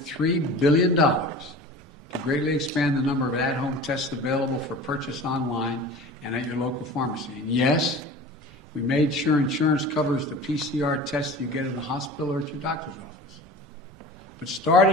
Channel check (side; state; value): both; normal; correlation 0.38